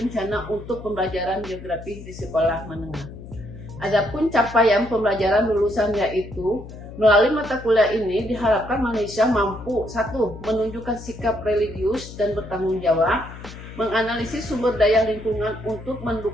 untuk pembelajaran geografi di sekolah menengah. Adapun capaian pembelajaran lulusan yaitu melalui mata kuliah ini diharapkan Malaysia mampu 1. Menunjukkan sikap religius dan bertanggung jawab, menganalisis sumber daya lingkungan untuk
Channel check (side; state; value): left; noise; hum, 14 dB below the sound